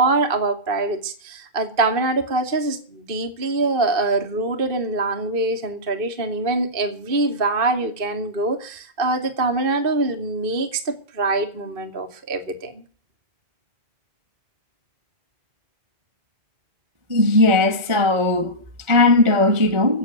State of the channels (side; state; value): left; late; 2.5 ms